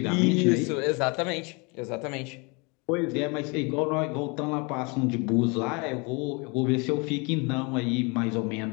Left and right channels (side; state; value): right; quieter; 29.9 dB